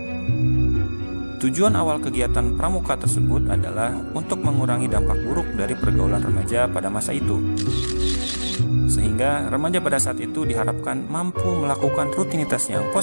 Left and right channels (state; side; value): inverted; both; correlation -1.00